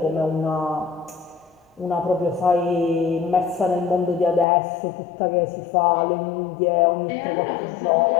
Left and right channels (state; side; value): drops out; right; at 4.5 s